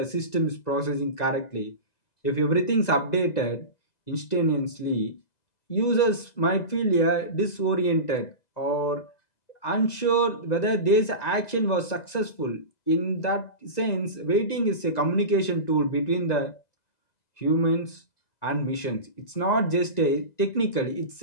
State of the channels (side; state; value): right; late; 2.0 ms